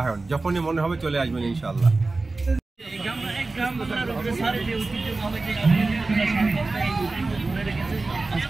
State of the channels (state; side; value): quieter; left; 3.4 dB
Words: যখনই মনে হবে চলে আসবেন ইনশাআল্লাহ।